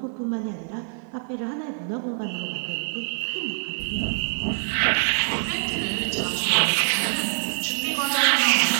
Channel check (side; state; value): left; silent; 62 dB below the other